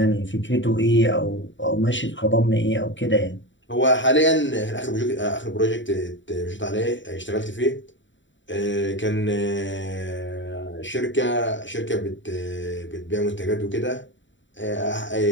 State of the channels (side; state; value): right; late; 0.54 ms